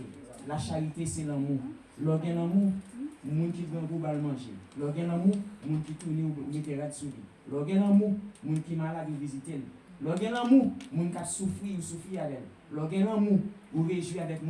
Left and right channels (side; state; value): both; identical; correlation 1.00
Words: La charité, c'est l'amour. L'organe l'amour, moun qui grand pour manger. L'organe l'amour, moun qui tourne ou mettra de souris. L'organe l'amour, moun qui malade ou visiter. L'organe l'amour, moun qui souffrir avec. L'organe l'amour, ou réjouir avec